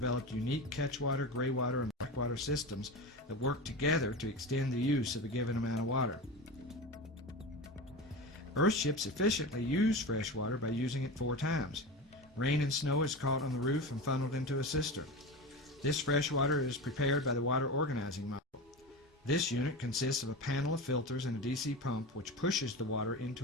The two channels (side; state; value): both; normal; correlation 0.26